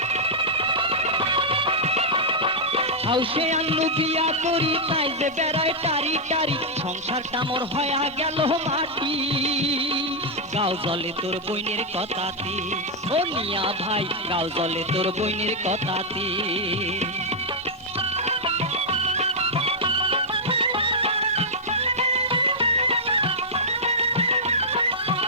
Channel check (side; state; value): both; normal; correlation -0.05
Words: হাউসে আনু বিয়া করি, তাই যে বেড়ায় টারি টারি। সংসারটা মোর হয়া গেল মাটি, গাও জলে তোর বইনের কথাতে। ও মিয়া ভাই, গাও জলে তোর বইনের কথাতে।